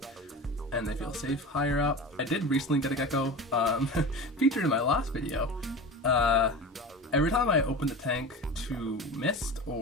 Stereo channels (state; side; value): normal; both; correlation 0.31